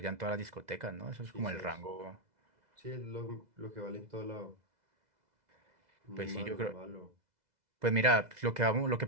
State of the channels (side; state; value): left; late; 2.0 ms